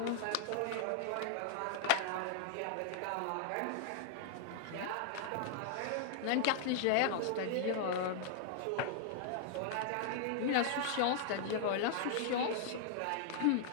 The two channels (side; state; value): both; different; correlation -0.01